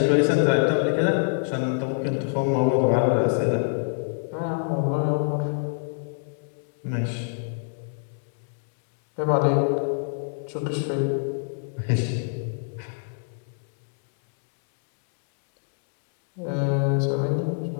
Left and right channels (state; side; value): silent; right; digital silence